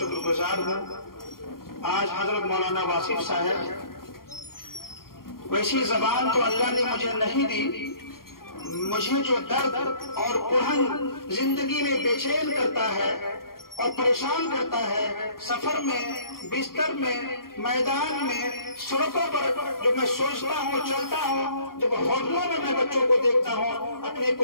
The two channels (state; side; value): late; right; 0.92 ms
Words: گزار ہوں۔ آج حضرت مولانا واصف صاحب، ویسی زبان تو اللہ نے مجھے نہیں دی، مجھے جو درد اور کڑھن زندگی میں بے چین کرتا ہے اور پریشان کرتا ہے، سفر میں، بستر میں، میدان میں، سڑکوں پر جو میں سوچتا ہوں، چلتا ہوں، جب ہوٹلوں میں میں بچوں کو دیکھتا ہوں، اپنے